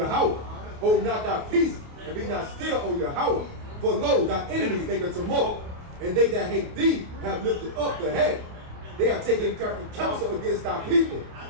Hold not thy peace, and be not still, O Yahweh. For lo, thy enemies make a tumult, and they that hate thee have lifted up the head. They have taken crafty counsel against thy people,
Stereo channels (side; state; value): left; late; 28 ms